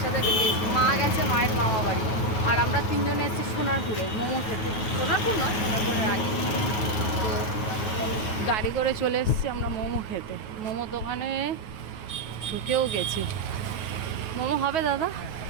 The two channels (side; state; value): right; late; 9.3 ms